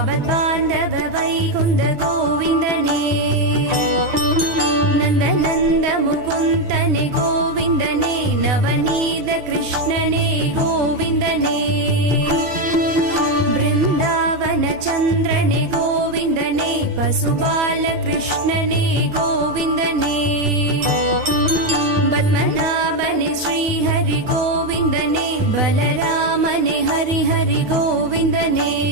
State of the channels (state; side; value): late; left; 9.5 ms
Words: ஆபத்பாந்தவ Vaikuntha கோவிந்தனே Nanda Nanda முகுந்தனே கோவிந்தனே Navaneetha கிருஷ்ணனே கோவிந்தனே Brindavan சந்திரனே கோவிந்தனே பசுபால கிருஷ்ணனே கோவிந்தனே பத்மநாபனே Srihari கோவிந்தனே பலராமனே Hari Hari கோவிந்தனே